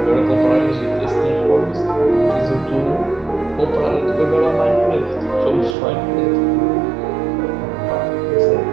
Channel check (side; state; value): left; drops out; at 5.8 s